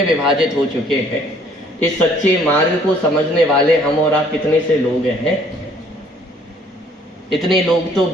विभाजित हो चुके हैं। इस सच्चे मार्ग को समझने वाले हम और आप कितने से लोग हैं? इतने लोग तो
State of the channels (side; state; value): both; normal; correlation 0.60